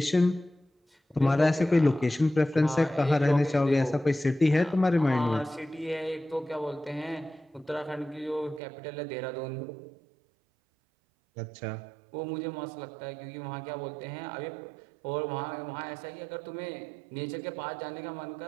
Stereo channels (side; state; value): left; drops out; at 8.6 s